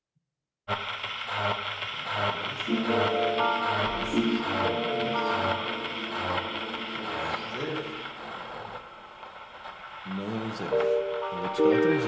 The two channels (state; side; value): identical; both; correlation 1.00